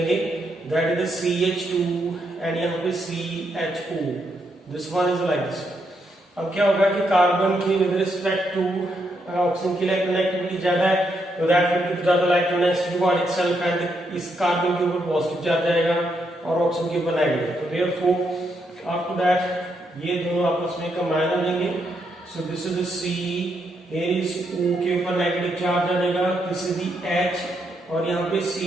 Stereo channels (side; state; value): both; normal; correlation 0.78